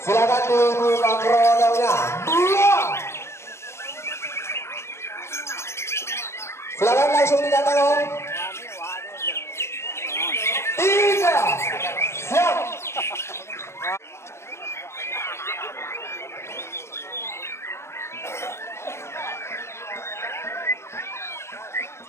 Silakan dibuka krononya 2. Silakan langsung dikatakan 3. Siap.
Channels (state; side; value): late; right; 0.13 ms